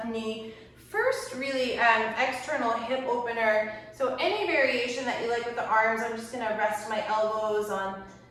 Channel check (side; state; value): both; identical; correlation 1.00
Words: knee. First, really external hip opener. So any variation that you like with the arms, I'm just gonna rest my elbows on